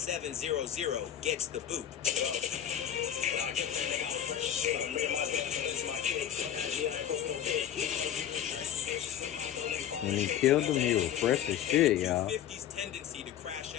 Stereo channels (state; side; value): quieter; right; 10.4 dB